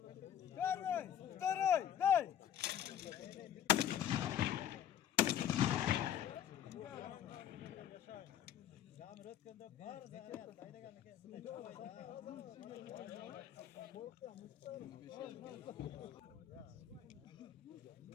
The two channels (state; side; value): quieter; right; 10.1 dB